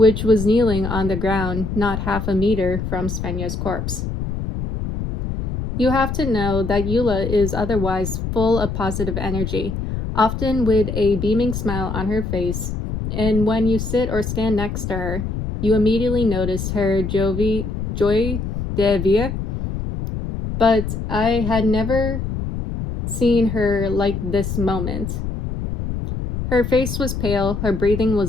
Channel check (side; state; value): left; noise; rumble, 4 dB below the sound